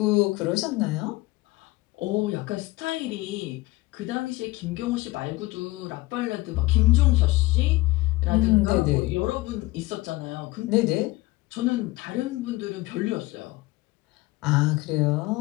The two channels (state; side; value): quieter; right; 20.2 dB